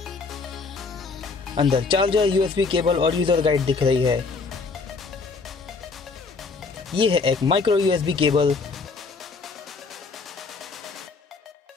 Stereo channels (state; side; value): quieter; right; 4.4 dB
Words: अंदर चार्जर, यूएसबी केबल और यूजर गाइड दिख रही है। ये है एक माइक्रो यूएसबी केबल।